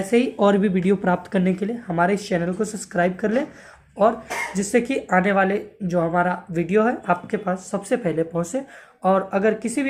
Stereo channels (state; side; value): identical; both; correlation 1.00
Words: ही और भी वीडियो प्राप्त करने के लिए हमारे इस चैनल को सब्सक्राइब कर लें और जिससे कि आने वाले जो हमारा वीडियो है आपके पास सबसे पहले पहुंचे। और अगर किसी